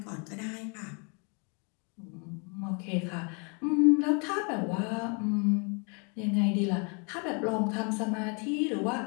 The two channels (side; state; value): right; quieter; 35.6 dB